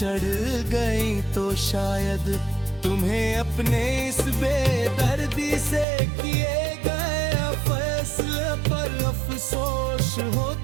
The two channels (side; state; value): left; drops out; at 5.9 s